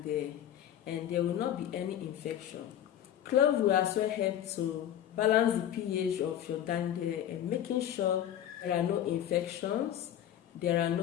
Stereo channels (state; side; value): quieter; right; 10.8 dB